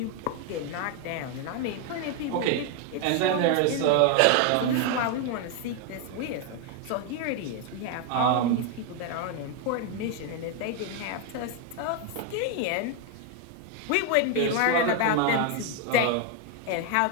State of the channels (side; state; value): both; different; correlation 0.01